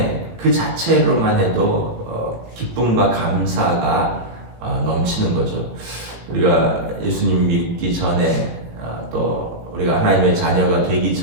그 자체로만 해도 기쁨과 감사가 넘치는 거죠. 우리가 예수님 믿기 전에 또 우리가 하나님의 자녀가 되기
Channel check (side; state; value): left; late; 18 ms